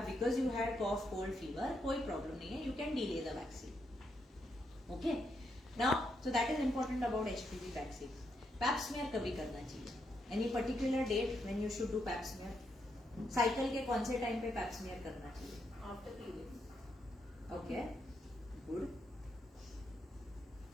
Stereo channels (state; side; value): normal; both; correlation 0.80